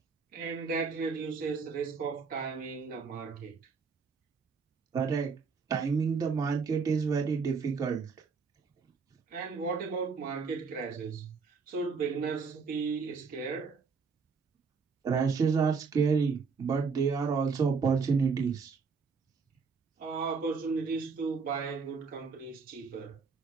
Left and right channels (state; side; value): quieter; left; 5.2 dB